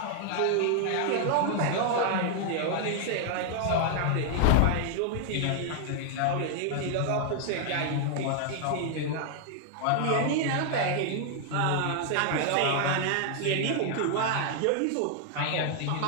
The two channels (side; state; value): both; different; correlation 0.00